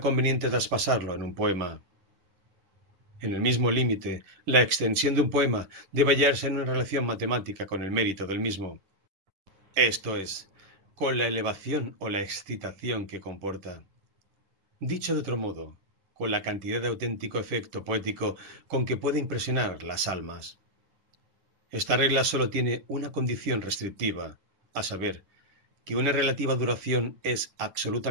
conveniente traspasarlo en un poema. En el mismo límite, la extensión de un poema debe hallarse en una relación matemática con el mérito del mismo, esto es, con la elevación o la excitación que comporta. Dicho de otro modo, con la cantidad de auténtico efecto poético con que puede impresionar las almas. Esta regla solo tiene una condición restrictiva, a saber, que una relativa duración es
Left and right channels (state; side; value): late; left; 10 ms